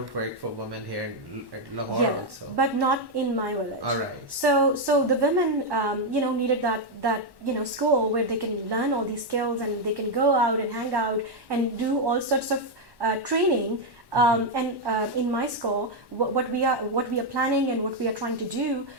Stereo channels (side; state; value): left; late; 1.1 ms